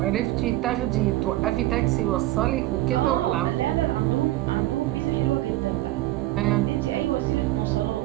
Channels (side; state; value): left; quieter; 16.5 dB